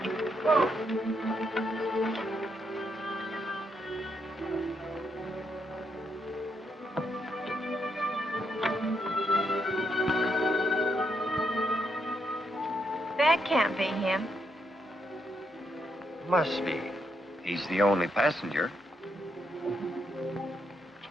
Whoa. That can't be him. Must be. He's the only passenger.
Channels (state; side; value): normal; both; correlation 0.78